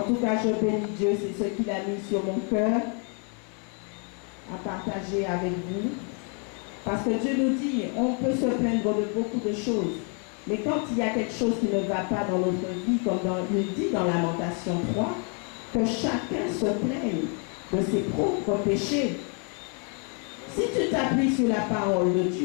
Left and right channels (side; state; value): right; quieter; 39.4 dB